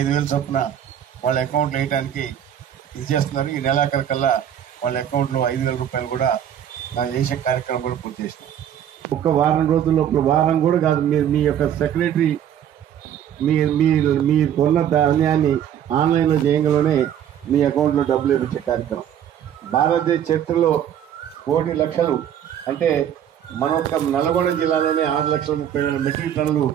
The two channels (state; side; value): quieter; left; 9.9 dB